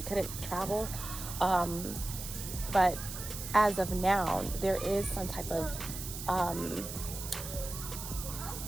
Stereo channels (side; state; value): right; noise; hiss, 8 dB below the sound